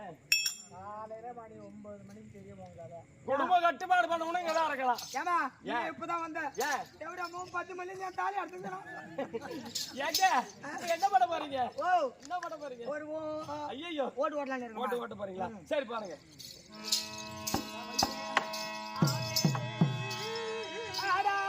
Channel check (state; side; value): identical; both; correlation 1.00